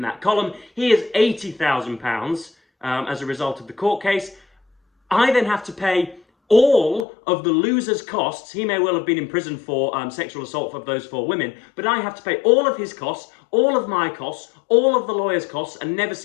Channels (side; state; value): right; drops out; at 7.1 s